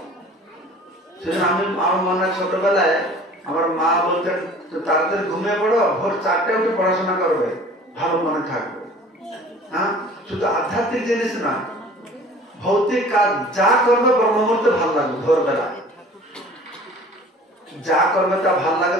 সেজন্য আমার মনে হয় ছোটবেলায় আমার মা বলতেন তাড়াতাড়ি ঘুমিয়ে পড়ো, ভোর 4টায় উঠে পড়াশোনা করবে, ভালো মনে থাকবে। হ্যাঁ, শুধু আধ্যাত্মিক জিনিস না, ভৌতিক কাজ যা করবে ব্রহ্ম মুহূর্তে ভালো লাগবে। ভোরবেলা যা করবে তা ভালো লাগে,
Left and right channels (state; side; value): normal; both; correlation 0.47